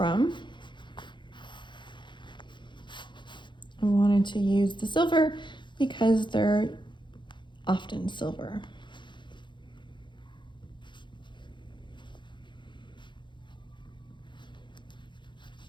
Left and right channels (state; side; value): late; right; 0.23 ms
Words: I wanted to use the silver because they're often silver.